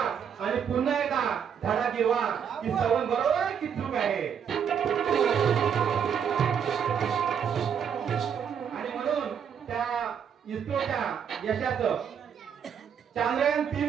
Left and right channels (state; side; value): quieter; left; 7.7 dB